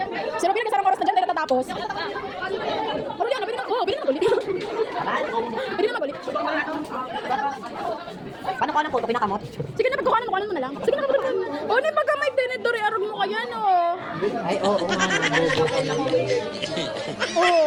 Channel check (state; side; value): identical; both; correlation 1.00